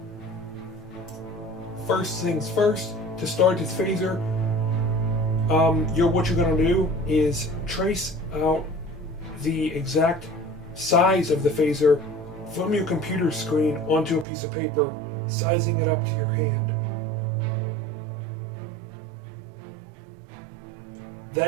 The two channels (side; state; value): left; drops out; at 14.2 s